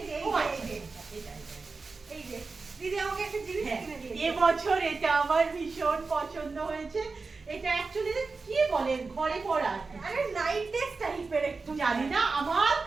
যে, ও, এই যে, এটা। এই যে দিদি আমাকে একটা জিনিস হ্যাঁ, কিনে দিয়েছে। এবছর এটা আমার ভীষণ পছন্দ হয়েছে। এটা অ্যাকচুয়ালি কি বলে, ঘরে পড়া, আরে নাইট ড্রেস টাইপের একটু, জানি না, আমার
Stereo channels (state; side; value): quieter; left; 4.1 dB